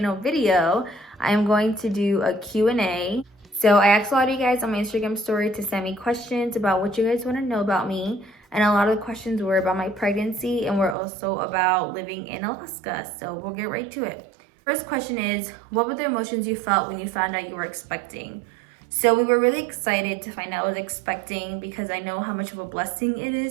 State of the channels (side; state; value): left; drops out; at 11.0 s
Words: video, I'm going to do a Q&A. So I asked a lot of you guys on my Instagram story to send me questions about what you guys want to know about me. And a lot of the questions were about my pregnancy and were also about living in Alaska. So we'll get right to it. First question is, what were the emotions you felt when you found out you were expecting? So we were really excited to find out I was expecting because I know how much of a blessing it